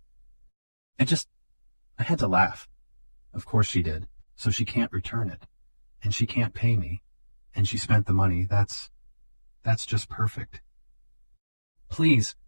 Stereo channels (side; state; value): both; inverted; correlation -1.00